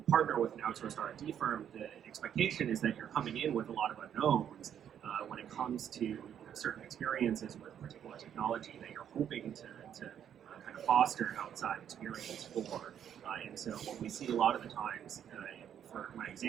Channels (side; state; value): left; quieter; 9.3 dB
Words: partner with an outsourced R&D firm, the expectation is that you're coming in with a lot of unknowns when it comes to certain experiences with particular technology that you're hoping to kind of foster outside experience for. And so what we see a lot of the times, for my